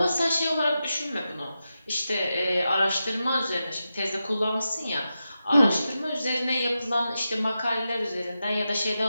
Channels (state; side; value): inverted; both; correlation -0.90